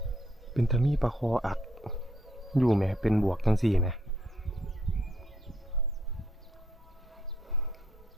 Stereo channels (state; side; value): normal; both; correlation 0.73